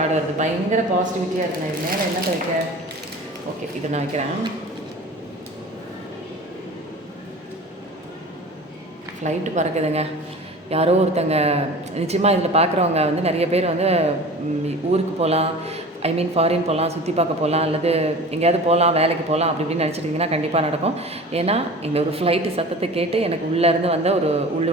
வருது, பயங்கர பாசிட்டிவிட்டியாக இருக்குண்ணா. இது மேலே என்ன வைக்க, ஓகே இதை நான் வைக்கிறேன். ஃப்ளைட்டு பறக்குதுங்க. யாரோ ஒருத்தங்க நிச்சயமாக இதில் பார்க்குறவங்க வந்து நிறைய பேர் வந்து ஊருக்கு போகலாம், ஐ மீன் ஃபாரின் போகலாம், சுற்றி பார்க்க போகலாம், அல்லது எங்கேயாவது போகலாம், வேலைக்கு போகலாம் அப்படி இப்படின்னு நினச்சிட்டிங்கன்னா கண்டிப்பாக நடக்கும். ஏன்னா இந்த ஒரு ஃப்ளைட்டு சத்தத்தை கேட்டு எனக்கு உள்ளேருந்து வந்த ஒரு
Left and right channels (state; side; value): normal; both; correlation 0.38